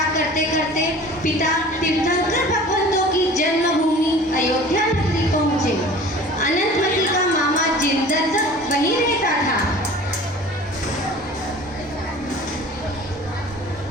करते करते पिता तीर्थंकर भगवंतों की जन्मभूमि अयोध्या नगरी पहुंचे। अनंतमती का मामा जिंदर वहीं रहता था।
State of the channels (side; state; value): both; normal; correlation 0.43